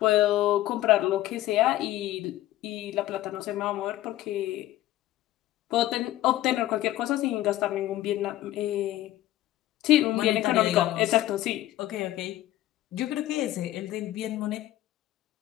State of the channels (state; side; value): quieter; right; 15.0 dB